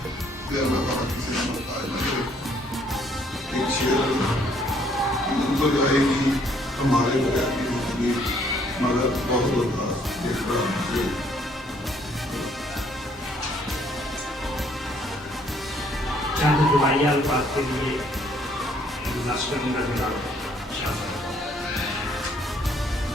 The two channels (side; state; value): both; normal; correlation 0.65